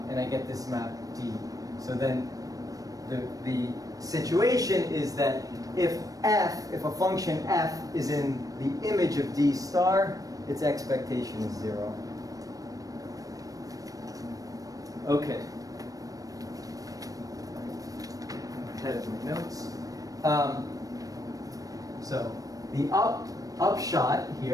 I get this map d. So then the situation is that if a function f is in the image of d star, its expectation is 0. Okay. Ahead of my notes. So the upshot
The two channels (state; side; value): late; left; 0.17 ms